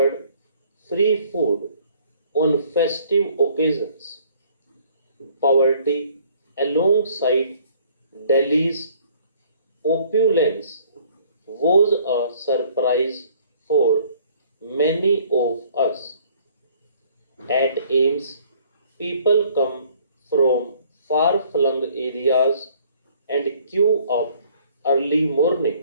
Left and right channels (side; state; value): both; inverted; correlation -0.59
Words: free food on festive occasions. Poverty, alongside Delhi's opulence, was a surprise for many of us. At AIMS, people come from far flung areas and queue up early morning